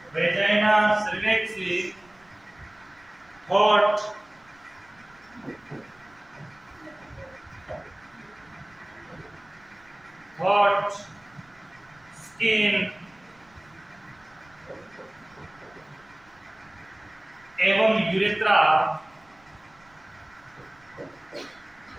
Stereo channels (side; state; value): right; noise; rumble, 30 dB below the sound